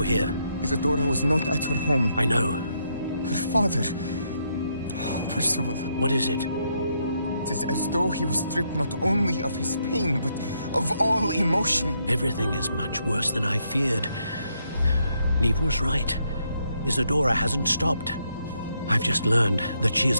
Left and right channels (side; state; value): both; inverted; correlation -0.77